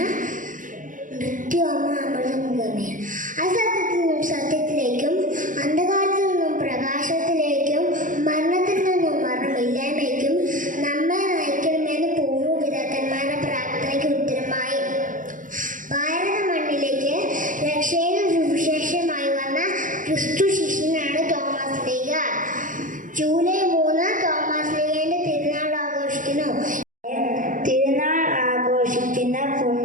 മൃത്യോമ അമൃതംഗമയ. അസത്യത്തിൽ നിന്നും സത്യത്തിലേക്കും, അന്ധകാരത്തിൽ നിന്നും പ്രകാശത്തിലേക്കും, മരണത്തിൽ നിന്നും മരണമില്ലായ്മയ്ക്കും നമ്മെ നയിക്കണമെന്ന് പൂർവ്വപിതാക്കന്മാരുടെ പ്രാർത്ഥനയ്ക്ക് ഉത്തരമായി ഭാരത മണ്ണിലേക്ക് രക്ഷയുടെ സുവിശേഷമായി വന്ന ക്രിസ്തു ശിഷ്യനാണ് തോമസ് ലീഗ. ജൂലൈ 3 തോമസ് ലീഗയുടെ തിരുനാൾ ആഘോഷിക്കുന്നു. തിരുനാൾ ആഘോഷിക്കുന്ന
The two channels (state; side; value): late; left; 0.38 ms